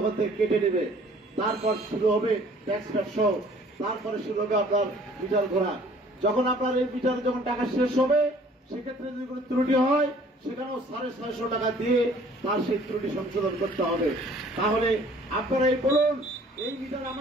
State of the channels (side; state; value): both; normal; correlation 0.54